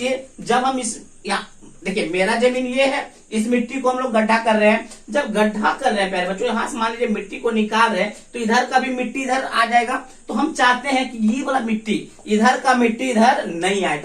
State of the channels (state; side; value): identical; both; correlation 1.00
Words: जब हम इस यहाँ देखिए, मेरा जमीन ये है, इस मिट्टी को हम लोग गड्ढा कर रहे हैं। जब गड्ढा कर रहे हैं प्यारे बच्चों, यहां से मान लीजिए मिट्टी को निकाल रहे हैं, तो इधर का भी मिट्टी इधर आ जाएगा। तो हम चाहते हैं कि ये वाला मिट्टी, इधर का मिट्टी इधर नहीं आए,